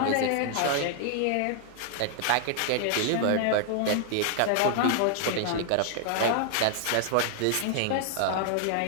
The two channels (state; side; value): different; both; correlation 0.00